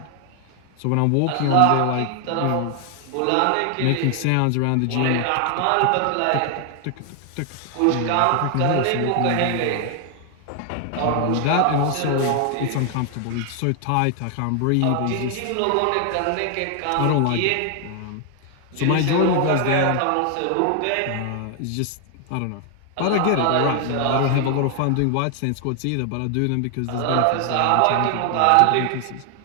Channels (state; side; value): different; both; correlation 0.00